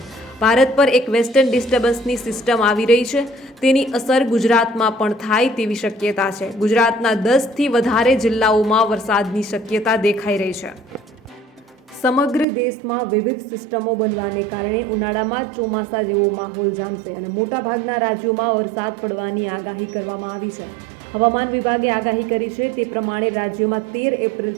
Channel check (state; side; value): drops out; left; at 12.5 s